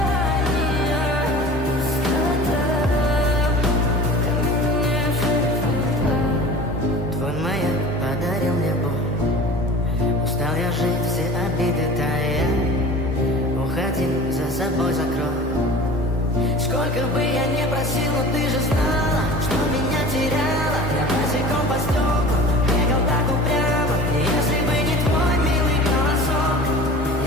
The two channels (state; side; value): normal; both; correlation 0.40